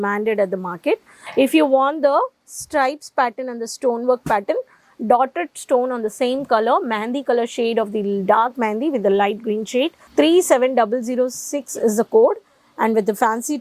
at the market. If you want the stripes pattern and the stonework pattern, dotted stone on the same color, mehndi color shade of the dark mehndi with the light green shade, 37006 is the code, and with the fancy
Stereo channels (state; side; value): identical; both; correlation 1.00